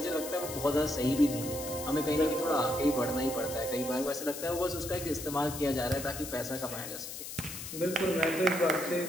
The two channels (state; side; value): noise; left; hiss, 9 dB below the sound